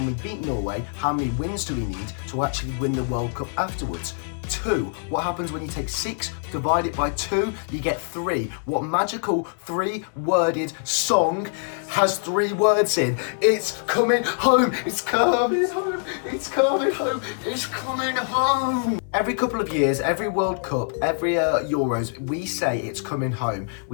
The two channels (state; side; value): silent; right; 61 dB below the other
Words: we beat Norway, how many wins do we need to actually win the World Cup afterwards? 2. What happens when you take 6, divide it by 2, you get 3. What magical 3-worded song has 3 words in? It's coming home, it's coming home, it's coming home, it's coming home. Every couple of years, every World Cup, every Euros, we say it's coming home.